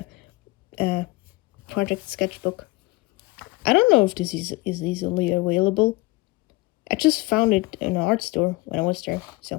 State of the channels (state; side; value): quieter; right; 22.2 dB